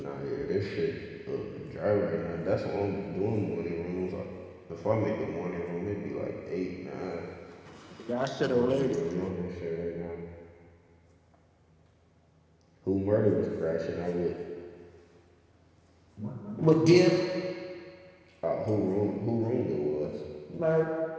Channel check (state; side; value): identical; both; correlation 1.00